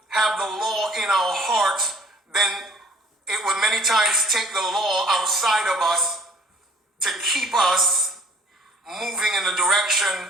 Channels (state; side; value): normal; both; correlation 0.53